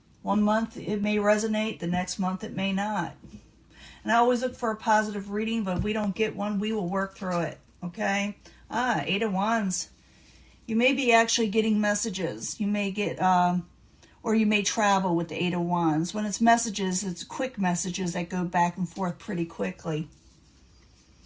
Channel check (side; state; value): both; identical; correlation 1.00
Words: One month it may resonate, the next month it may not. And I always look for a positive reading, but if we don't get one, we will work through it, okay? Eight of Wands. You may be actually getting messages. You may get, or you may travel with the Eight of Wands. When it's messages, it's quick messages that go back and forth pretty quickly.